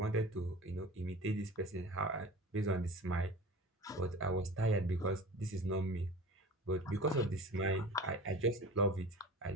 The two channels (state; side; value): normal; both; correlation 0.38